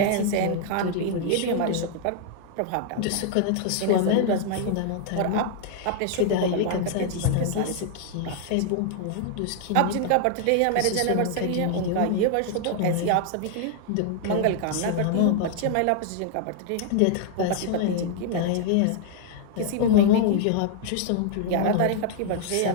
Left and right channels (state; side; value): different; both; correlation 0.00